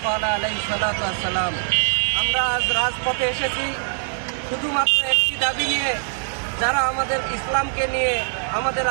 قال عليه الصلاة والسلام। আমরা আজ রাজপথে এসেছি শুধুমাত্র একটি দাবি নিয়ে, যারা আমাদের ইসলামকে নিয়ে, আমাদের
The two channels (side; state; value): left; silent; digital silence